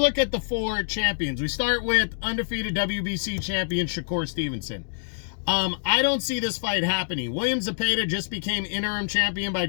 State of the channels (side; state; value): right; silent; digital silence